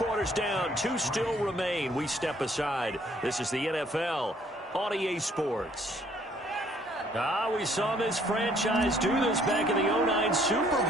down. 2 still remain. We step aside. This is the NFL on EA Sports. We saw this franchise do this back in the 2009 Super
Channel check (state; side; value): normal; both; correlation 0.63